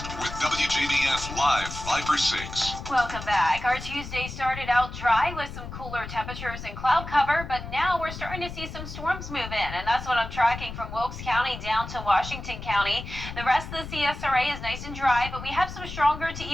with WJBF Live Viper 6. Welcome back. Our Tuesday started out dry with some cooler temperatures and cloud cover, but now we're starting to see some storms move in, and that's what I'm tracking from Wilkes County down to Washington County. The rest of the CSRA is nice and dry, but we have some stronger to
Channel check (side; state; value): left; noise; rumble, 10 dB below the sound